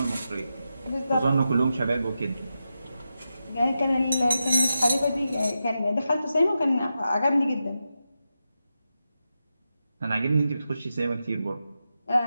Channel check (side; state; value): both; inverted; correlation -0.89